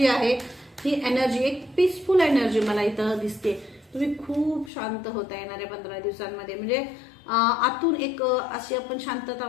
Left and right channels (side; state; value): right; drops out; at 4.7 s